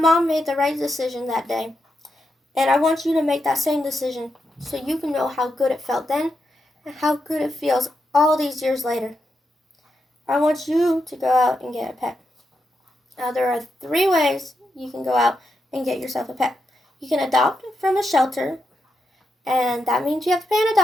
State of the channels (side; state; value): both; normal; correlation 0.85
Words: made the right decision that day, and I want you to make that same decision so you can know how good it felt then and how good it feels all these years later. I want you to go out and get a pet. Now, there are 3 ways you can go out and get yourself a pet. You can adopt from a shelter, and that means you have to pay an